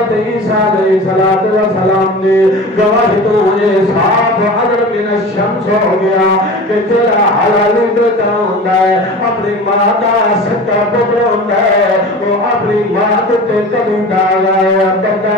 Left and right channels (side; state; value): both; normal; correlation 0.35